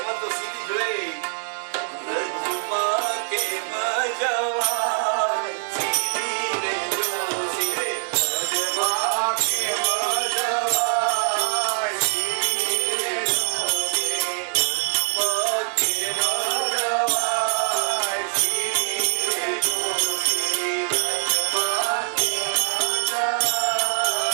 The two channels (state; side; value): silent; left; digital silence